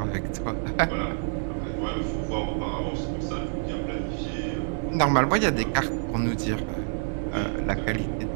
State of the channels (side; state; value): left; silent; digital silence